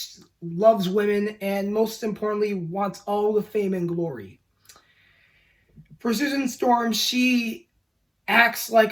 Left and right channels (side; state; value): both; identical; correlation 1.00